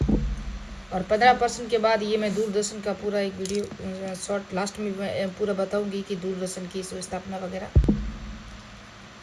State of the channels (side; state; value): both; identical; correlation 1.00